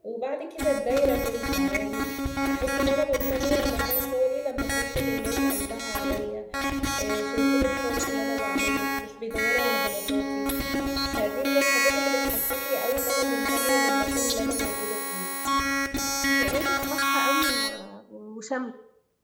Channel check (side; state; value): both; identical; correlation 1.00